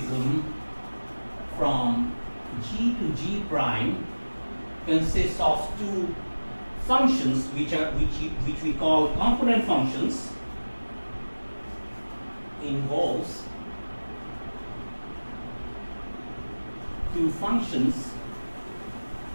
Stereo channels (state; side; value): inverted; both; correlation -1.00